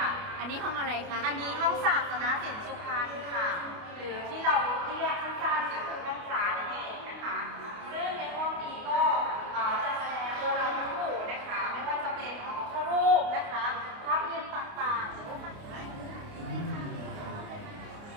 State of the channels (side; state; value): left; late; 29 ms